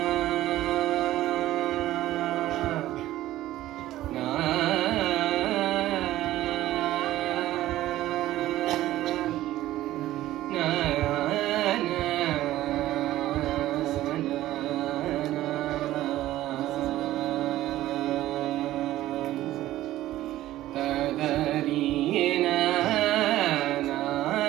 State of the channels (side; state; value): left; quieter; 14.9 dB